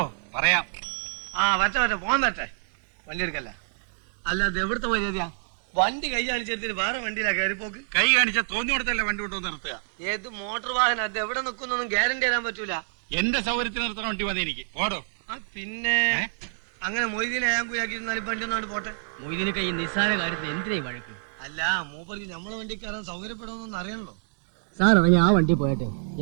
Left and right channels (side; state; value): left; silent; digital silence